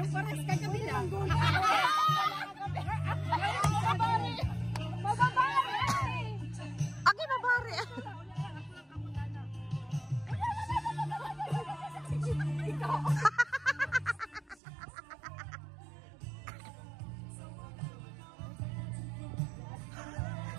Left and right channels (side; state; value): left; drops out; at 14.6 s